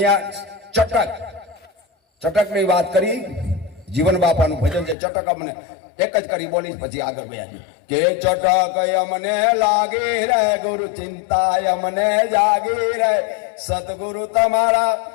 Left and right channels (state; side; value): drops out; right; at 5.0 s